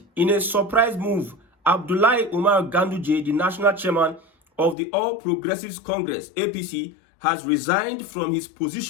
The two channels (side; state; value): right; drops out; at 4.8 s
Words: In a surprise move, Abdullahi Umar Ganduje, the National Chairman of the All Progressives Congress, APC, has resigned from his